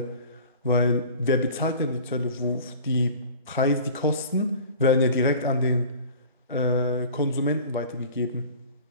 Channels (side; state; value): both; inverted; correlation -0.42